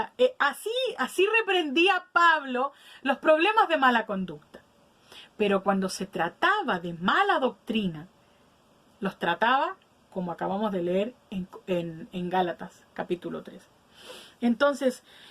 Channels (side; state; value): both; identical; correlation 1.00